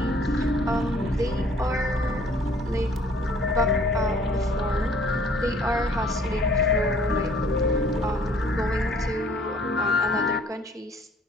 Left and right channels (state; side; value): normal; both; correlation 0.57